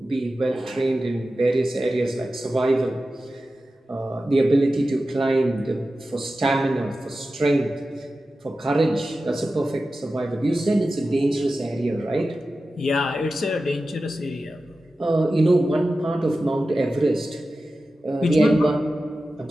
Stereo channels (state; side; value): normal; both; correlation 0.93